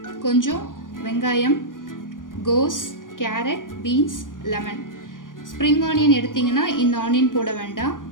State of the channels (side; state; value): right; late; 0.89 ms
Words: கொஞ்சம் வெங்காயம், கோஸ், carrot, beans, lemon. Spring onion எடுத்தீங்கன்னா இந்த ஆனியன் போட வேண்டாம்,